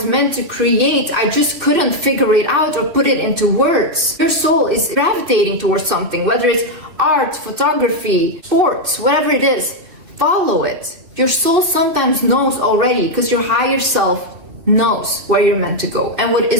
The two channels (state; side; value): late; left; 2.6 ms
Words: meant to create. I just couldn't figure it out or put it into words. Your soul is gravitating towards something, whether it's art, photography, sports, whatever it is, follow it. Your soul sometimes knows already because your higher self knows where you're meant to go and what